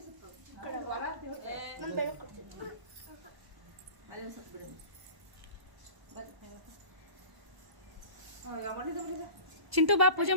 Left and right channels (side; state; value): left; late; 1.0 ms